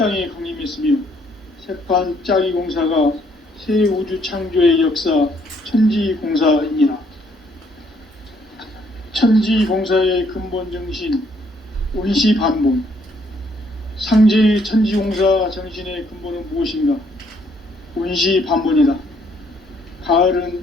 강림했으며 새판짜기 공사가 새 우주 창조의 역사 천지공사이니라. 천지공사의 근본 정신 온시반본. 상제의 천지공사 정신의 근본은 무엇인가? 온시반본이다.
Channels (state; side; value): normal; both; correlation 0.68